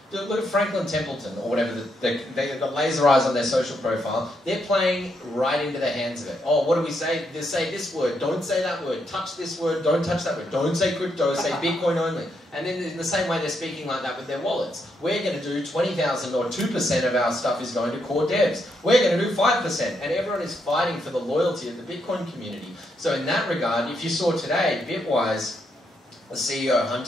Franklin Templeton, or whatever, they've got laser eyes on their social profile. They're playing right into the hands of it. Oh, what do we say? They say this word, don't say that word, touch this word, don't touch that word, don't say crypto, say Bitcoin only. And then in the same way they're speaking like that with their wallets. We're going to do 20,000 or 2% of our stuff is going to core devs. We're going to do 5%. And everyone is fighting for the loyalty of the Bitcoin community. So in that regard, if you saw today, Bitwise, the CEO,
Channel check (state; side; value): normal; both; correlation 0.78